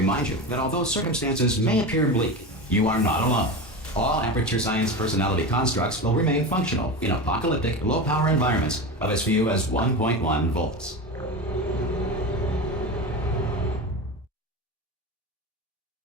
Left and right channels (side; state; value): both; normal; correlation 0.24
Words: you that although circumstances may appear bleak, you are not alone. All Aperture Science personality constructs will remain functional in apocalyptic, low-power environments of as few as 1.1 volts.